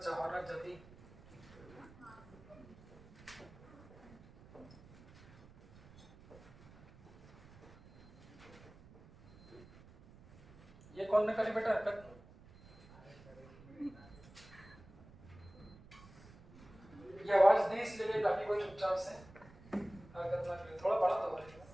जदी ये कौन ने करी बेटा हरकत? ये आवाज दी इसलिए ताकि कोई चुपचाप से हरकत ना करे। थोड़ा बड़ा तो बोलेगा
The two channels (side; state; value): right; noise; rumble, 21 dB below the sound